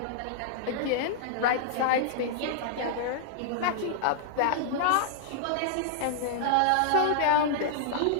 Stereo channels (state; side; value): different; both; correlation -0.01